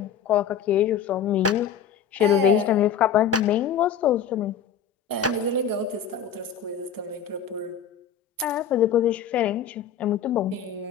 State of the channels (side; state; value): right; quieter; 7.8 dB